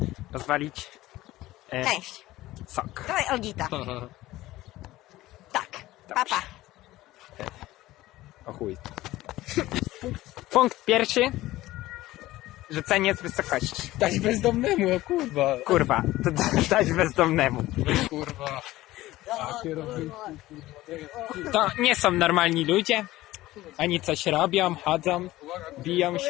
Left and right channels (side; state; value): right; quieter; 16.8 dB